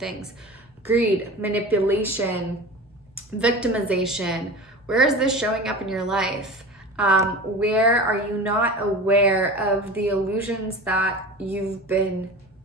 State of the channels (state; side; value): normal; both; correlation 0.34